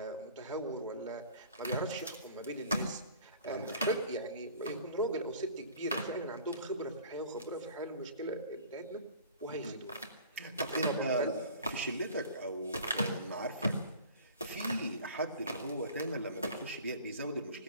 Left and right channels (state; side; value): inverted; both; correlation -0.46